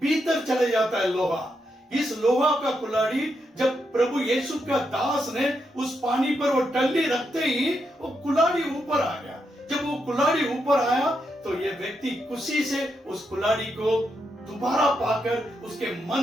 भीतर चले जाता है लोहा। इस लोहा का कुल्हाड़ी जब प्रभु यीशु का दास ने उस पानी पर वो टल्ली रखते ही वो कुल्हाड़ी ऊपर आ गया। जब वो कुल्हाड़ी ऊपर आया तो ये व्यक्ति खुशी से उस कुल्हाड़ी को दोबारा पाकर उसके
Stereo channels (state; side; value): normal; both; correlation 0.82